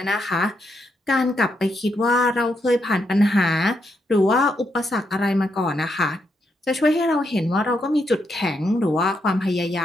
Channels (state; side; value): normal; both; correlation 0.80